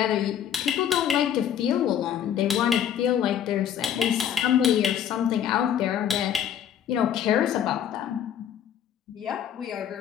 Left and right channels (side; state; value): right; quieter; 9.6 dB